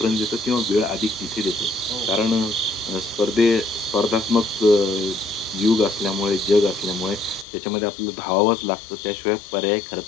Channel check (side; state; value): right; drops out; at 7.5 s